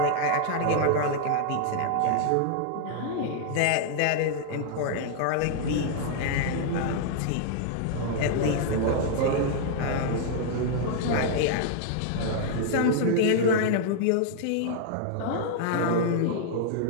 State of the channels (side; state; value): both; different; correlation -0.01